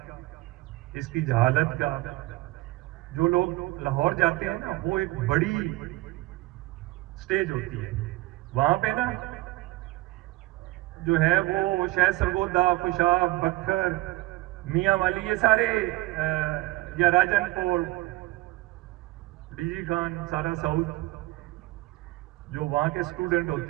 اس کی جہالت کا، جو لوگ لاہور جاتے ہیں نا، وہ ایک بڑی سٹیج ہوتی ہے وہاں پہ نا، جو ہے وہ شاید سرگودا، خوشاب، بکھر، میاں والی، یہ سارے یا راجن پور، ڈی جی خان، سارا ساؤتھ، جو وہاں کے اسٹوڈنٹ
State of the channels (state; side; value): quieter; left; 19.5 dB